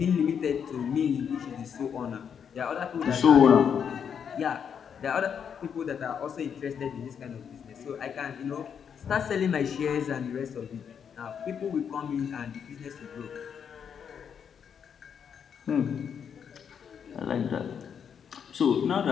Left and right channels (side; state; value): right; quieter; 7.5 dB